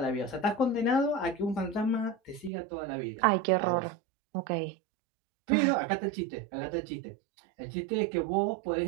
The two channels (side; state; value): left; drops out; at 2.5 s